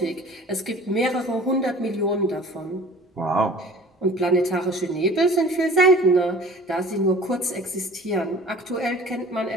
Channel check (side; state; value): both; normal; correlation 0.45